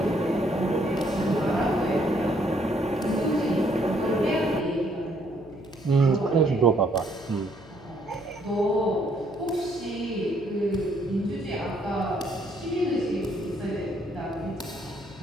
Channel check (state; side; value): noise; left; hum, 21 dB below the sound